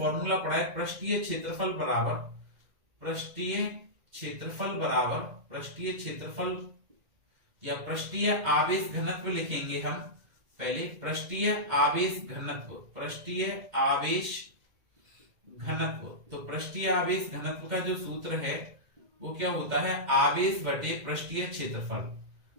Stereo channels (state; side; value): late; left; 2.1 ms